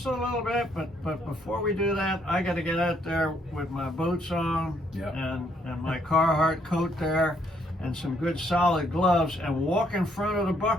a little bit. But before we do that, I got to get out there with my boots on and my Carhartt coat there, and some good solid gloves, and walk in front of the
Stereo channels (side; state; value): both; normal; correlation 0.70